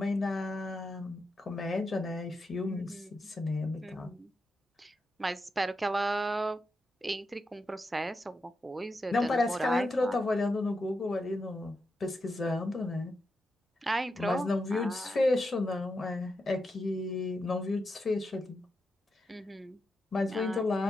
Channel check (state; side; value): normal; both; correlation 0.86